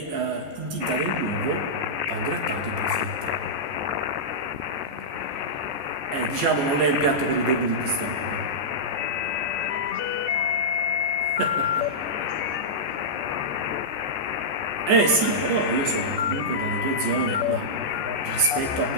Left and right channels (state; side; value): late; left; 14 ms